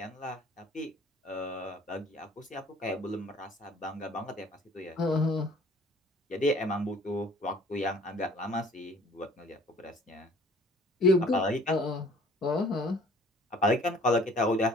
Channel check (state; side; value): normal; both; correlation 0.54